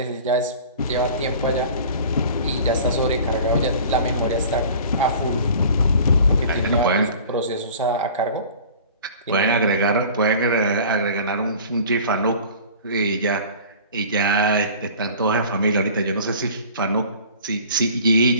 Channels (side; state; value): both; inverted; correlation -0.44